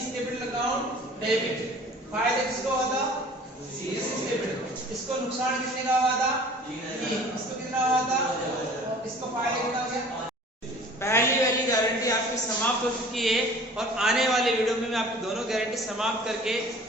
कैपिटल अकाउंट डेबिट। फायदा किसको हुआ था, सी कैपिटल। इसको नुकसान कितने का हुआ था, इसको कितना हुआ था, इसको फायदा कितना हो गया। पहली वाली गारंटी आपकी समाप्त हो चुकी है और आने वाले वीडियो में मैं आपकी दोनों गारंटी समाप्त करके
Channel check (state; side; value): normal; both; correlation 0.48